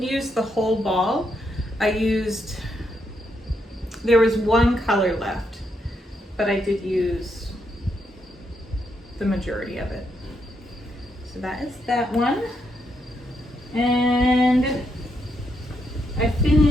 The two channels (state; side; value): normal; both; correlation 0.79